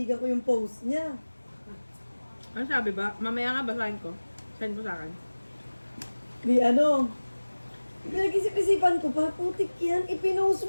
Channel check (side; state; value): both; inverted; correlation -1.00